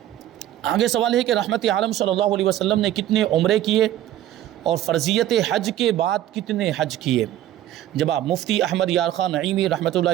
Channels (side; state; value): left; quieter; 12.9 dB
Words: آگے سوال ہے کہ رحمت عالم صلی اللہ علیہ وسلم نے کتنے عمرے کیے اور فرضیت حج کے بعد کتنے حج کیے؟ جواب، مفتی احمد یار خان نعیمی رحمۃ